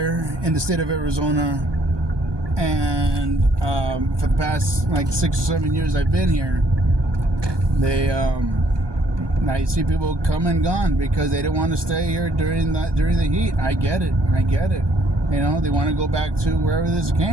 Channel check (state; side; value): late; left; 1.2 ms